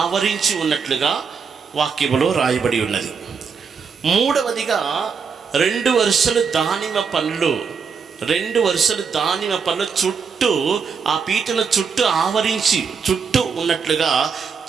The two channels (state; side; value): quieter; left; 5.9 dB